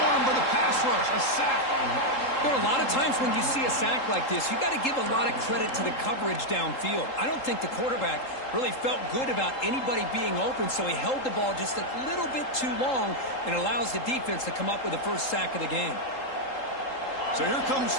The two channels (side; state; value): right; late; 3.8 ms